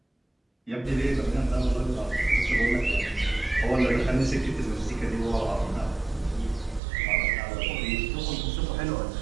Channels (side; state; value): left; drops out; at 6.8 s